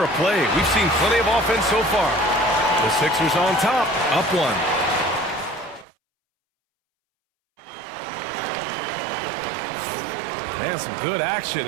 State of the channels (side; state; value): left; drops out; at 5.9 s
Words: of play. We've seen plenty of offense so far. The Sixers on top, up 1. And some good action